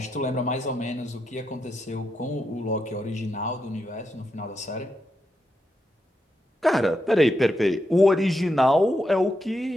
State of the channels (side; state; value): both; normal; correlation 0.84